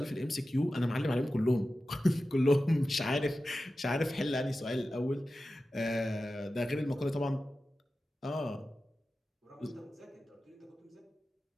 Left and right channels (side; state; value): both; normal; correlation 0.94